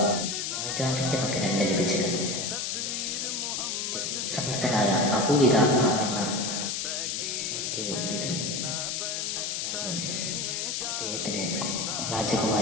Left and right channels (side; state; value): left; noise; hiss, 1 dB below the sound